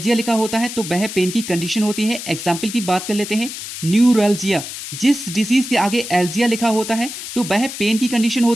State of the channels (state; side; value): noise; left; hiss, 9 dB below the sound